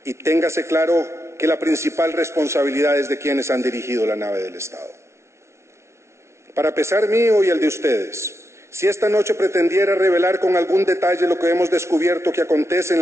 Y téngase claro que la principal responsabilidad es de quienes han dirigido la nave del Estado. Para pesar mío y el de ustedes, si esta noche pretendiera revelar con algún detalle lo que hemos descubierto que acontece en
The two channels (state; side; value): late; left; 0.13 ms